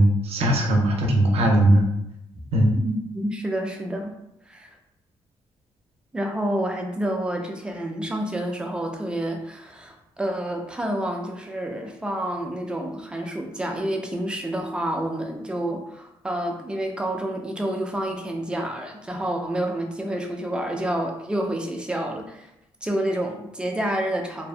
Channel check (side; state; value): both; normal; correlation 0.80